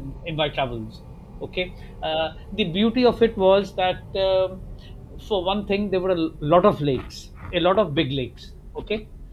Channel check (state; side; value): identical; both; correlation 1.00